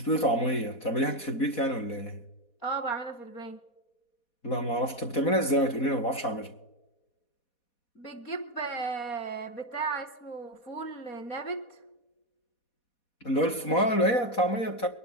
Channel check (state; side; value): late; right; 4.1 ms